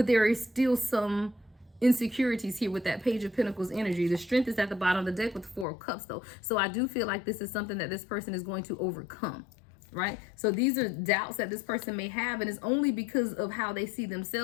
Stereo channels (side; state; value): right; drops out; at 5.7 s